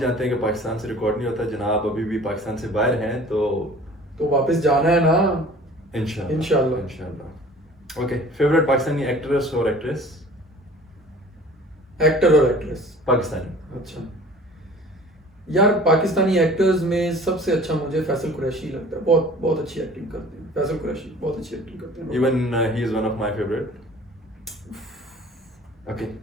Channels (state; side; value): normal; both; correlation 0.47